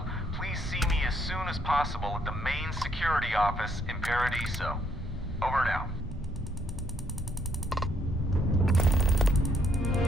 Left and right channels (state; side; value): normal; both; correlation 0.71